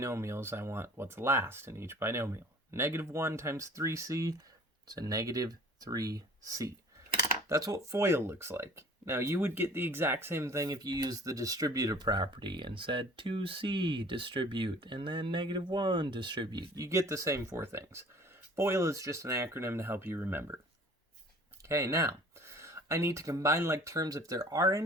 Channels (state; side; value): normal; both; correlation 0.49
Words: I want what's last in each binomial. Negative 1 times 3c is a negative 3c. That's what FOIL looks like. Now, you would get the exact same thing if you used the distributive property and said 2c distribute, and then negative 1 distribute. You get the same four things. FOIL is just an acronym to help you remember. Okay, now, I need to combine like terms if there are